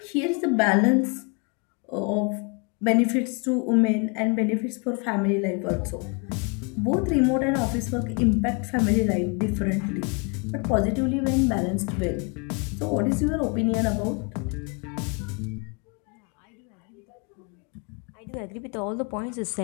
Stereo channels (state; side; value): quieter; right; 34.2 dB